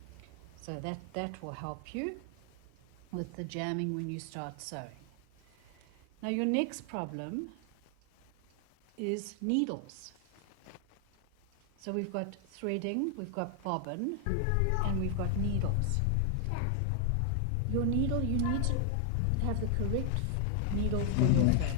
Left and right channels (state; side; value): different; both; correlation 0.00